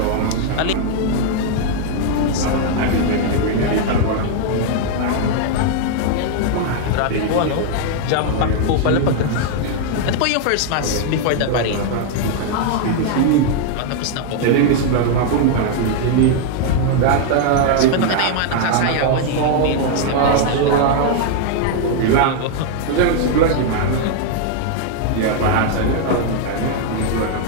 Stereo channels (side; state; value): both; different; correlation 0.00